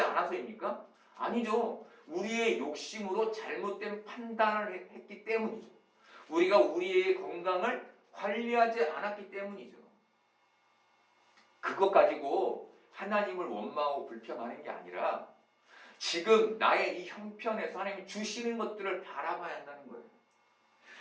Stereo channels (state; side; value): identical; both; correlation 1.00